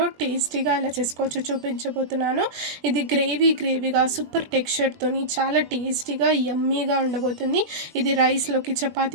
టేస్టీగా ఎలా చేసుకోవచ్చో చూపించబోతున్నాను. ఇది గ్రేవీగా సూపర్ టెక్స్చర్తోని చాలా టేస్టీగా యమ్మీగా ఉండబోతుంది. ఇది రైస్లోకి,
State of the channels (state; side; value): late; left; 20 ms